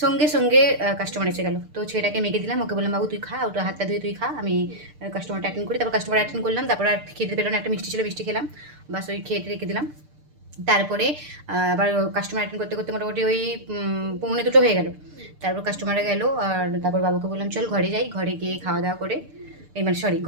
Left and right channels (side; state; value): left; late; 6.7 ms